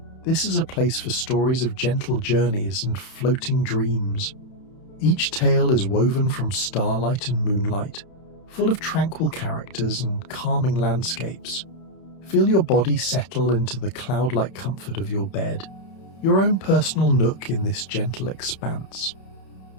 This is a place for stories of gentle journeys and floating dreams. Each tale is woven from starlight and moonlight, full of tranquil characters and calming landscapes. Feel your body settle into the cloud-like comfort of your bed, your own personal nook in this gentle expanse.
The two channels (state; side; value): late; right; 31 ms